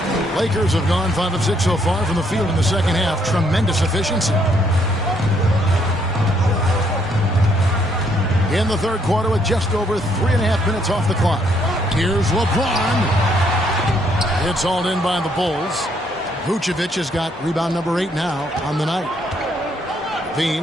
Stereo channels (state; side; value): normal; both; correlation 0.70